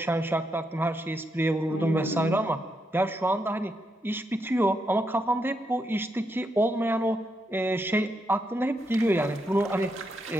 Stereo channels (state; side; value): normal; both; correlation 0.81